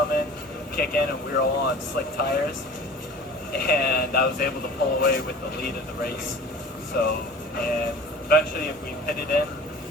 in, kick in, and we were all on slick tires, and I was able to pull away with the lead of the race. So, and eventually we pitted in,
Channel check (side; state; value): both; normal; correlation 0.42